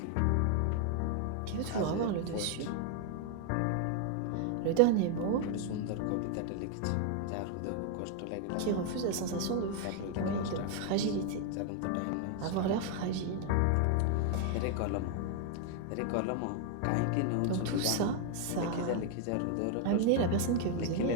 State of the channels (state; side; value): different; both; correlation 0.00